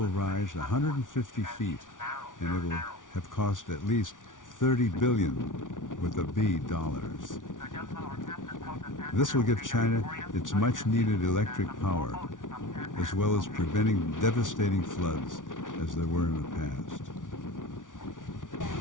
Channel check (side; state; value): right; late; 0.88 ms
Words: rise 150 feet, and it will have cost at least $30 billion with a B dollars. This will give China its much-needed electric power, as well as preventing devastating floods as there were in the past.